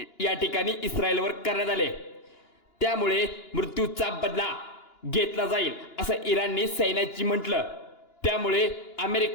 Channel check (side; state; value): right; late; 2.9 ms